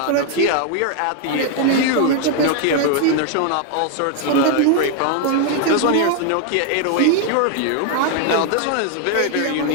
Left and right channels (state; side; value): different; both; correlation 0.00